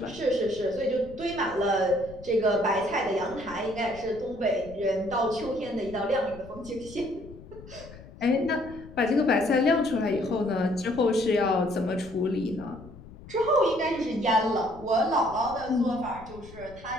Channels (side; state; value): left; noise; rumble, 18 dB below the sound